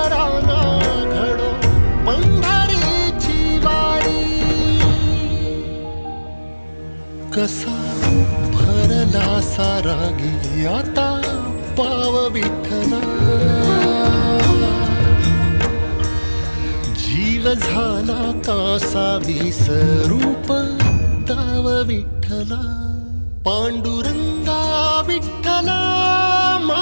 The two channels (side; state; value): both; inverted; correlation -1.00